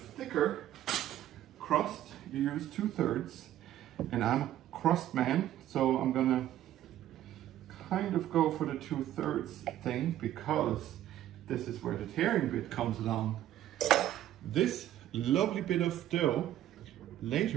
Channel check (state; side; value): quieter; left; 12.6 dB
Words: thicker crust, you use 2/3. And I'm a crust man, so I'm gonna kind of go for the 2/3 thing, because this is where the tearing bit comes along. This lovely bit of dough,